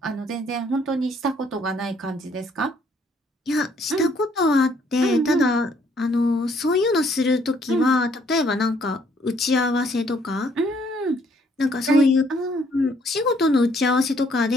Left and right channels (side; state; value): both; normal; correlation 0.66